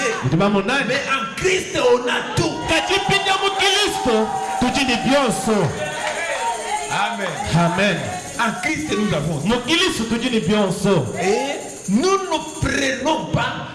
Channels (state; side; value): identical; both; correlation 1.00